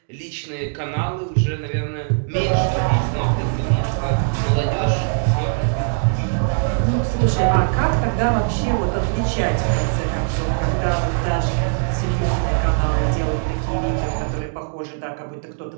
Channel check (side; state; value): left; silent; digital silence